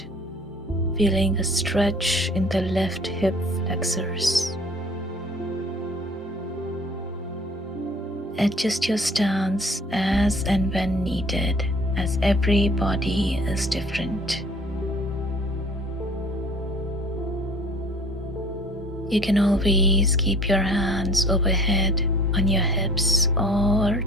feeling a stretch in the left hip flexors. Adjust your stance as and when needed, as every body is different. You can always keep your hands overhead on your hips or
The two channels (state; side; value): normal; both; correlation 0.50